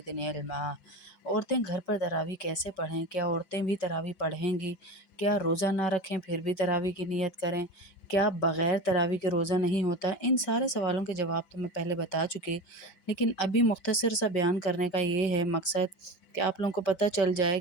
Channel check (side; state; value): right; late; 5.2 ms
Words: علما۔ عورتیں گھر پر تراویح کیسے پڑھیں؟ کیا عورتیں بھی تراویح پڑھیں گی؟ کیا روزہ نہ رکھیں پھر بھی تراویح کی نیت کریں؟ کیا بغیر تراویح کے روزہ نہیں ہوتا ہے؟ ان سارے سوالوں کے جواب تو میں پہلے بتا چکی، لیکن ابھی مختصر سا بیان کرنے کا یہ ہے مقصد کہ آپ لوگوں کو پتہ چل جائے